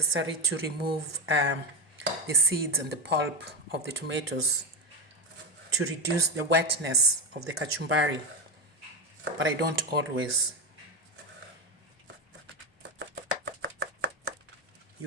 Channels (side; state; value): both; normal; correlation 0.14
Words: to remove the seeds and the pulp of the tomatoes to reduce the wetness of the kachumbari, but I don't always.